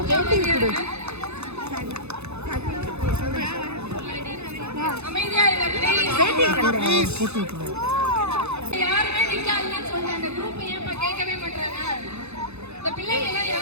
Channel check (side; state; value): left; late; 0.81 ms